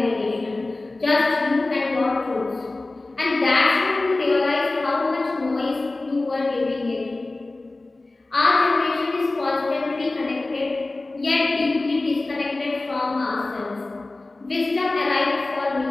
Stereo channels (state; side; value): quieter; right; 3.1 dB